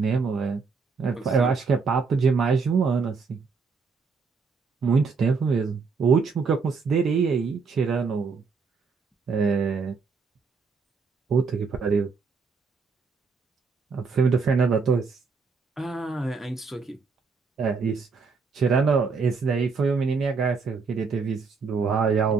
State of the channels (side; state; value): left; quieter; 5.0 dB